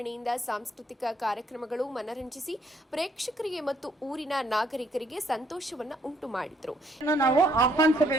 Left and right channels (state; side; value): normal; both; correlation 0.68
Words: ಸಾಂಸ್ಕೃತಿಕ ಕಾರ್ಯಕ್ರಮಗಳು ಮನರಂಜಿಸಿ ಪ್ರೇಕ್ಷಕರಿಗೆ ಮತ್ತು ಊರಿನ ನಾಗರಿಕರಿಗೆ ಸಂತೋಷವನ್ನು ಉಂಟು ಮಾಡಿದರು. ನಾವು